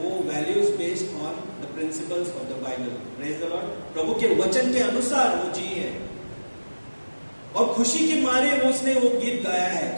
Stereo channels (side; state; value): both; inverted; correlation -1.00